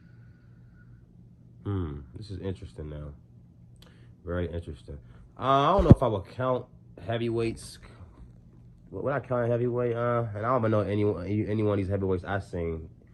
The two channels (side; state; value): both; identical; correlation 1.00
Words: this is interesting now. Very interesting. I don't know if I would count heavyweights. Would I count heavyweight? And I don't even know any one of these heavyweights I've seen